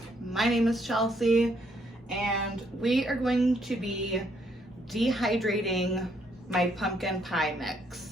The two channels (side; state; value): both; normal; correlation 0.71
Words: My name is Chelsea and we are going to be dehydrating my pumpkin pie